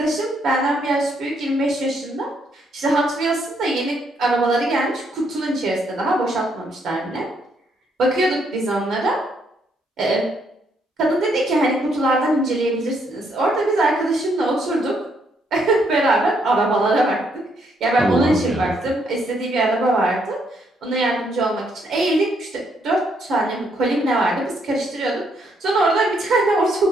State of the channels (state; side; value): normal; both; correlation 0.73